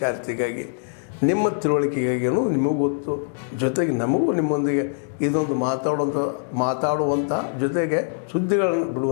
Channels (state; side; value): silent; right; digital silence